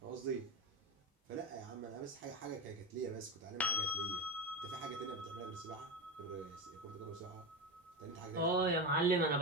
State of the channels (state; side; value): normal; both; correlation 0.20